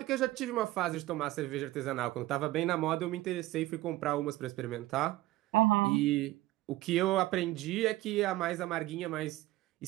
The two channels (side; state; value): left; quieter; 17.3 dB